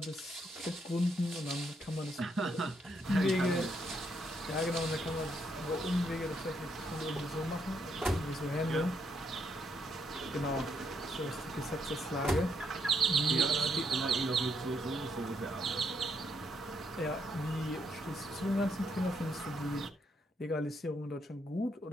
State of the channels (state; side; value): normal; both; correlation 0.75